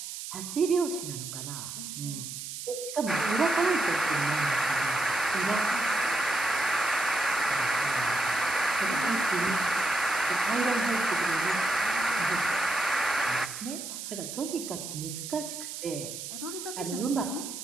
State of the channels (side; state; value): right; noise; hiss, 8 dB below the sound